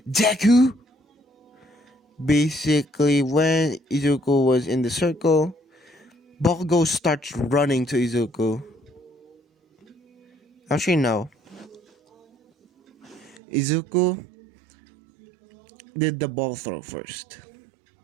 "Deku." Basically, when Izuku was in the circle, Bakugo starts running to Izuku. Actually, no. Izuku did the ball throw first,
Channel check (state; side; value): drops out; left; at 13.4 s